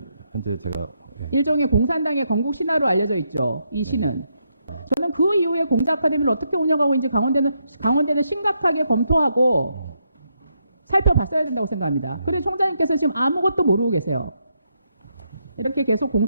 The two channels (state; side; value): inverted; both; correlation -0.79